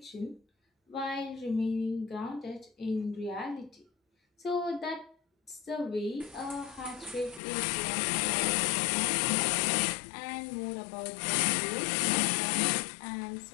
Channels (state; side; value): drops out; right; at 7.4 s